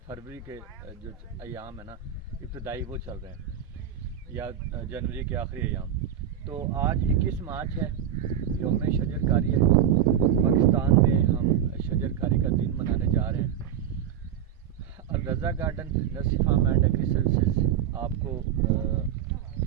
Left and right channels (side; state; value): left; quieter; 9.6 dB